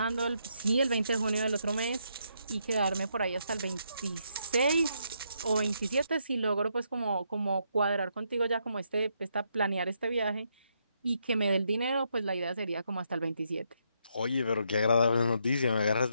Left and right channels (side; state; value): both; inverted; correlation -0.77